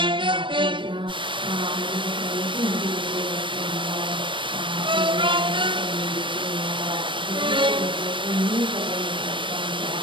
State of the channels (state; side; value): late; left; 0.24 ms